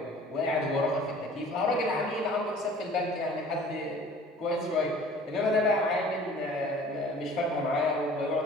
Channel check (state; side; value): normal; both; correlation 0.48